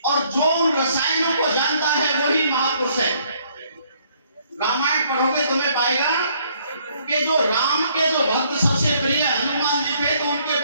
और जो उन रसायनों को जानता है वही महापुरुष है। रामायण पढ़ोगे तुम्हें पाएगा कि जो राम के जो भक्त सबसे प्रिय हनुमान जी थे, तो उनके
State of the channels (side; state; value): both; inverted; correlation -0.65